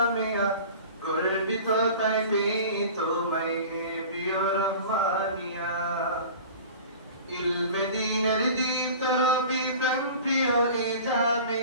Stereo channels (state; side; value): inverted; both; correlation -0.40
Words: গর্বিত তাই পেয়ে তোমায় হে প্রিয় রহমানিয়া المدينة দীপ্ত রবি প্রাণ প্রিয় এ